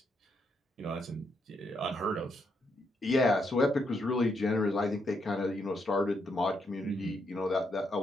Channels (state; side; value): normal; both; correlation 0.78